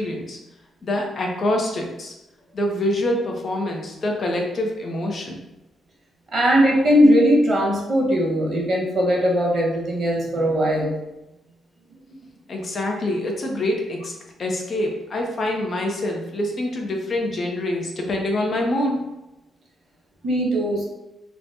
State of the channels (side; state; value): both; normal; correlation 0.78